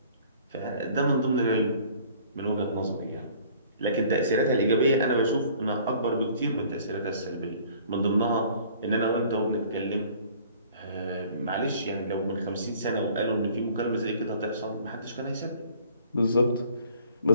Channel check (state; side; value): inverted; both; correlation -0.53